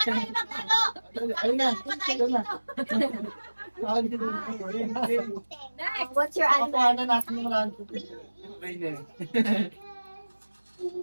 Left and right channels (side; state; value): both; inverted; correlation -1.00